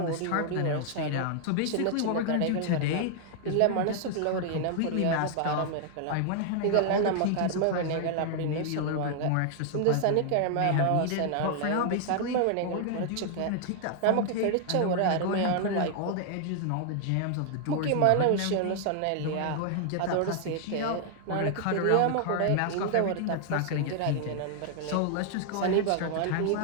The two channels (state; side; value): different; both; correlation 0.00